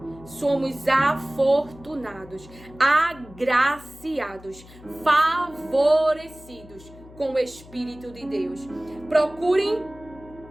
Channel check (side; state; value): left; noise; hum, 20 dB below the sound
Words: Somos afortunados, agraciados, favorecidos com o Espírito de Deus. Procurem,